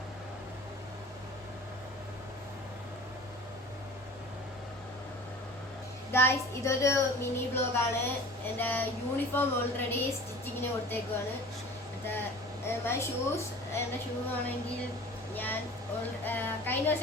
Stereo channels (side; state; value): left; noise; rumble, 24 dB below the sound